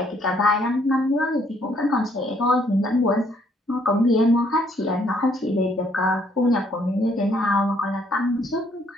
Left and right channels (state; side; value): normal; both; correlation 0.67